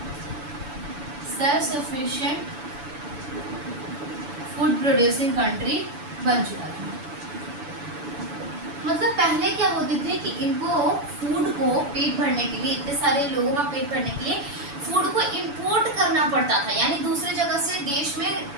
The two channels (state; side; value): late; left; 7.0 ms